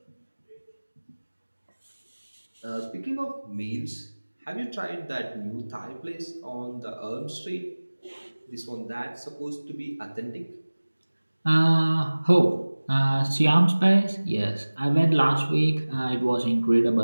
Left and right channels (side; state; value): both; inverted; correlation -1.00